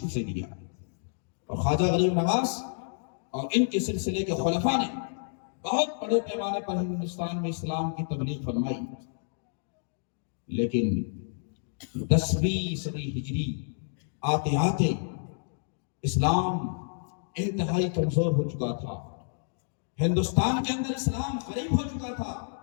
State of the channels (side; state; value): right; silent; digital silence